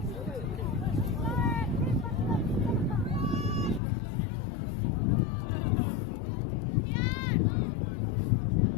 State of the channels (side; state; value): right; drops out; at 3.8 s